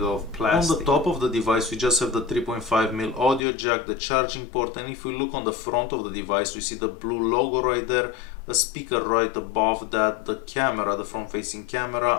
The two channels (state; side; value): drops out; right; at 3.5 s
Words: out of plastic. On the top of the device we just have the 3.5mm audio jack, the charging port, and if we look on the front of the device we see the BLU logo right there, a speaker right above that, the camera, the front facing